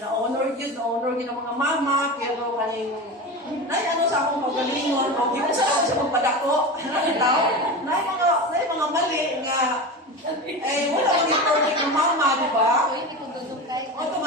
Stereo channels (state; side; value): normal; both; correlation 0.26